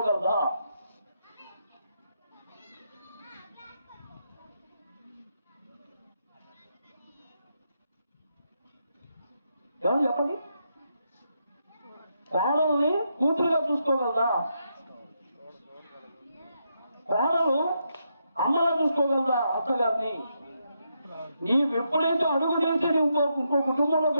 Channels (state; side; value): inverted; both; correlation -0.81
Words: ఎవరు చెప్పండి? కోడల్ని కూతురుగా చూసుకోగలదా? కోడలు అమ్మలా చూసుకోగలదా అత్తగారిని? నీవు ఎప్పుడైతే అడుగు చేసి నువ్వు ఇంకో కుటుంబంలోకి